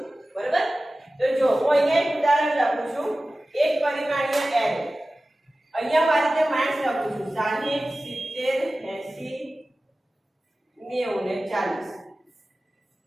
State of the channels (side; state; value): both; normal; correlation 0.96